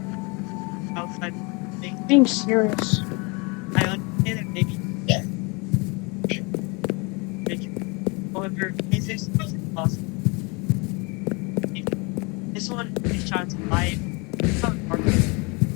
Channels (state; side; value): quieter; right; 29.5 dB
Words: outside things? being serious. I understand it maybe ridiculous. However, physics is impossible. This one is trying to lie about our